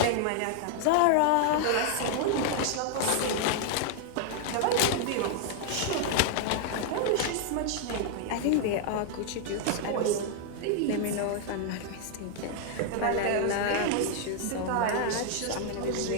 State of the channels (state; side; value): different; both; correlation 0.00